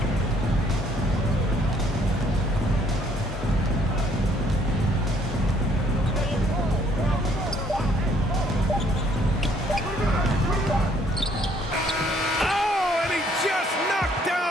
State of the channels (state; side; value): normal; both; correlation 0.64